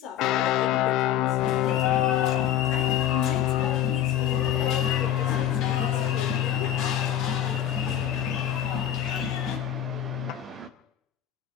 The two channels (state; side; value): quieter; right; 11.0 dB